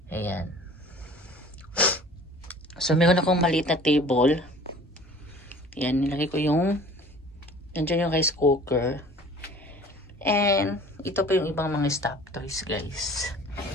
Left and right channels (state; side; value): normal; both; correlation 0.47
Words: Ayan. So, meron akong maliit na table. Ayan, nilagay ko yung, nandiyan yung rice cooker. And, ito po yung ibang mga stop toys, guys.